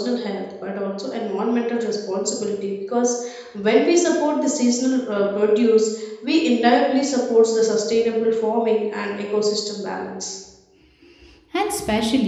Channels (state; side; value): identical; both; correlation 1.00